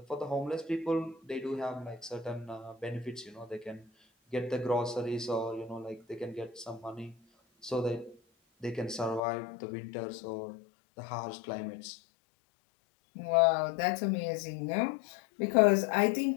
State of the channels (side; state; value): right; drops out; at 9.2 s